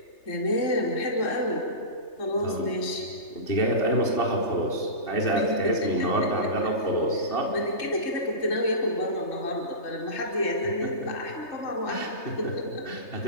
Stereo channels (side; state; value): right; late; 3.3 ms